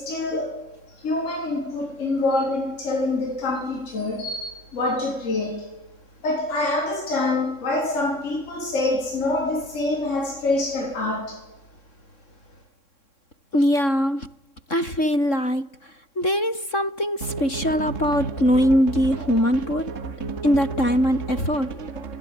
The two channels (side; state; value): right; late; 3.6 ms